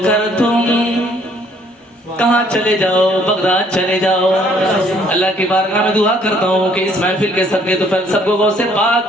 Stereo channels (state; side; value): normal; both; correlation 0.63